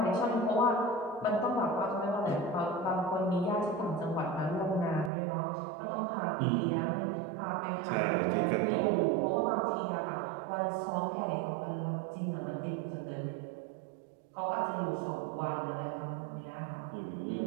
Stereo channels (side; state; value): left; drops out; at 5.1 s